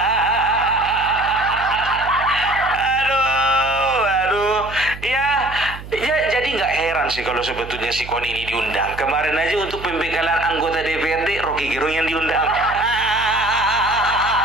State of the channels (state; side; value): noise; right; hum, 13 dB below the sound